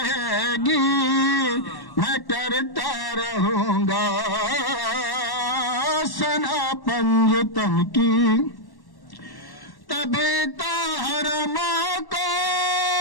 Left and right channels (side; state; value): right; late; 1.1 ms